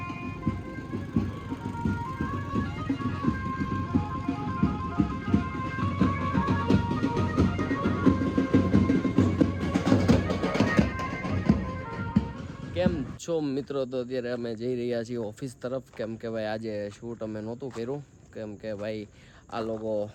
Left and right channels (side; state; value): both; identical; correlation 1.00